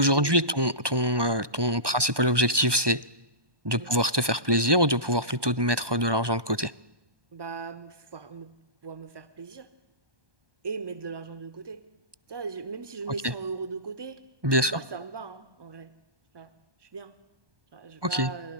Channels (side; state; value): left; late; 1.2 ms